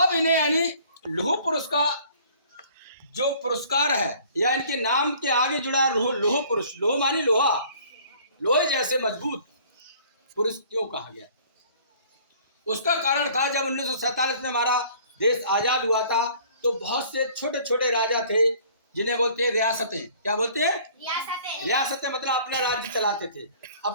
इन्हें यानी लौह पुरुष का जो पुरस्कार है या इनके नाम के आगे जुड़ा लौह पुरुष, लौह मानी लोहा, लोहे जैसे मजबूत पुरुष क्यों कहा गया? उसका कारण था जब 1947 में हमारा देश आजाद हुआ था तो बहुत से छोटे छोटे राजा थे जिन्हें बोलते हैं रियासतें। क्या बोलते हैं? रियासतें मतलब अपना राज्य चलाते थे,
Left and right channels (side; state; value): both; inverted; correlation -0.53